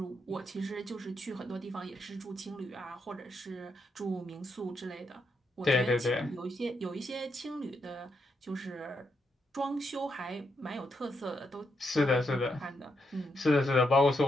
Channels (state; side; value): normal; both; correlation 0.80